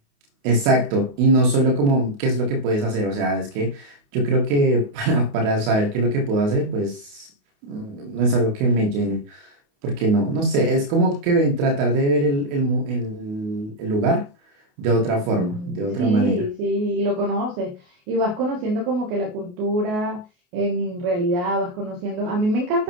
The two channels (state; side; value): late; left; 28 ms